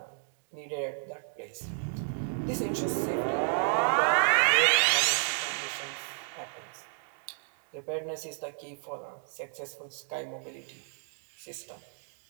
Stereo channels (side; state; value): left; silent; 57 dB below the other